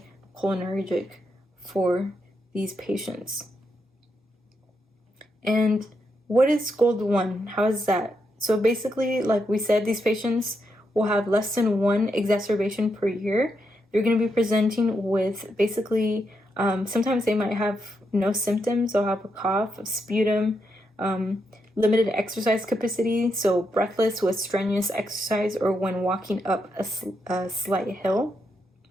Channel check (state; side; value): normal; both; correlation 0.82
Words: for these patients. And what is GOLD 1? How is that? So basically, like we said, these patients will have less than 1 exacerbation per year. They're going to be presenting with basically, sometimes they might have no symptoms. They'll have a cough, a sputum, limited exercise capacity, so breathless with strenuous exercise or when walking up a slight hill.